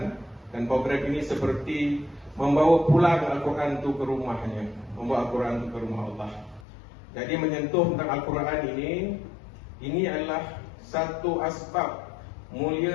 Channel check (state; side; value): drops out; right; at 6.7 s